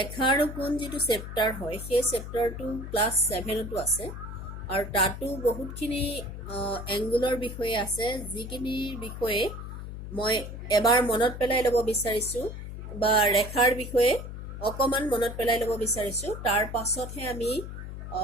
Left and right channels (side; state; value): left; noise; hum, 9 dB below the sound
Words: আৰু কোণ যিটো চেপ্টাৰ হয়, সেই চেপ্টাৰটো ক্লাছ 7তো আছে আৰু তাতো বহুতখিনি এংগুলৰ বিষয়ে আছে, যিখিনিৰ বিষয়ে মই এবাৰ মনত পেলাই ল'ব বিচাৰিছোঁ বা ৰেখাৰ বিষয়ে অকণমান মনত পেলাই ল'ব বিচাৰিছোঁ। তাৰ পাছতহে আমি